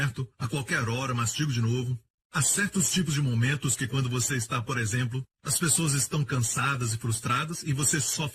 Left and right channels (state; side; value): identical; both; correlation 1.00